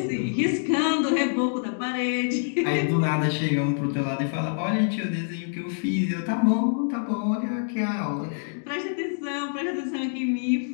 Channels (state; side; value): silent; right; digital silence